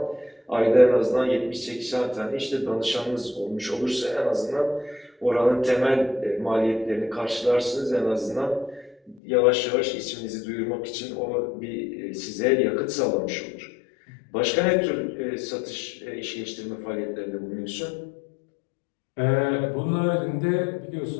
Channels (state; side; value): drops out; right; at 9.2 s